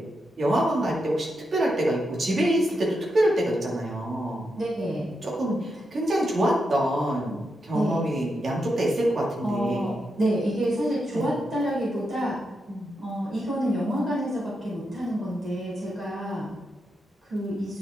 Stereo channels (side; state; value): both; normal; correlation 0.85